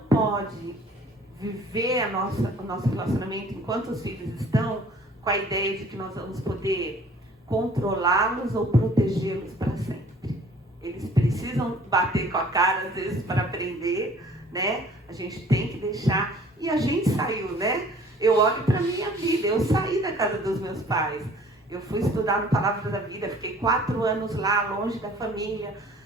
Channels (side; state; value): both; normal; correlation 0.53